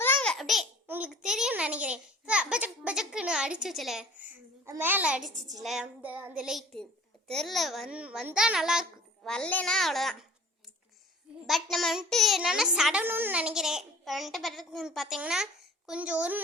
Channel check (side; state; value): both; normal; correlation 0.47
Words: அப்படியே உங்களுக்கு தெரியும்னு நினைக்கிறேன். பஜக்குன்னு அடிச்சிச்சுல, மேலே அடிச்சிச்சுல அந்த லைட்டு தெரில, வந்தால் நல்லாயிருக்கு, வரலன்னா அவ்வளோதான். பட் நம்ம வந்துட்டு என்னென்னா சடணும்னு நினைக்கிறேன். இப்போ வந்துட்டு பார்த்தீங்கன்னா கொஞ்சம் 1